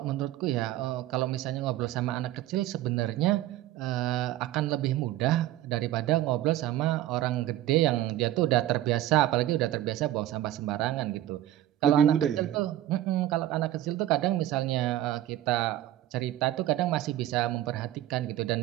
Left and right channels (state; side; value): quieter; left; 13.8 dB